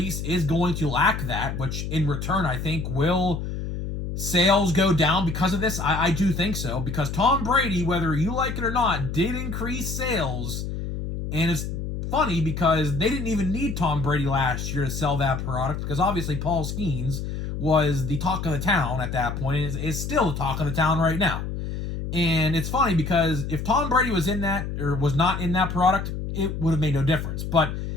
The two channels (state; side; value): noise; left; hum, 5 dB below the sound